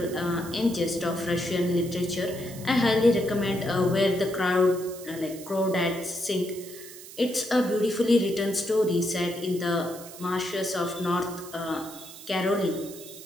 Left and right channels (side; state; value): right; noise; hiss, 15 dB below the sound